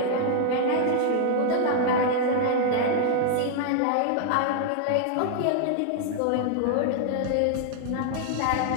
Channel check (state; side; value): different; both; correlation -0.01